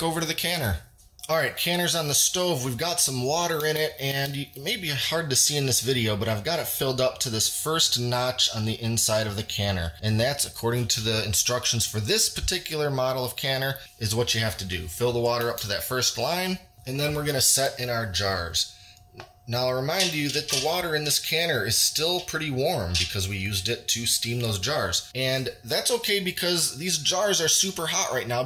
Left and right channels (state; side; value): identical; both; correlation 1.00